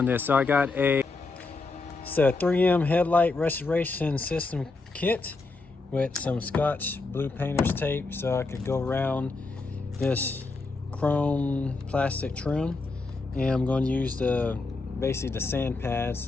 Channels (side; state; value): right; quieter; 3.7 dB